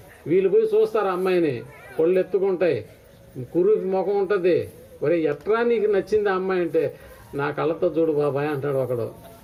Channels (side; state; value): both; identical; correlation 1.00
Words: వీళ్ళు పోయి చూస్తారు అమ్మాయిని, కొళ్ళు ఎత్తుకుంటాయి, కురుకి ముఖం ఉంటుంది. ఒరే ఎట్రా నీకు నచ్చింది ఆ అమ్మాయి అంటే, నా కళ్ళతో చూడు బాబాయ్ అంటాడు ఒకడు.